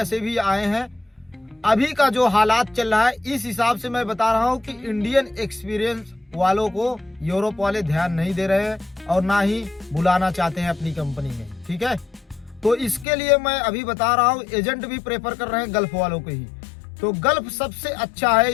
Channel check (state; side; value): drops out; right; at 13.1 s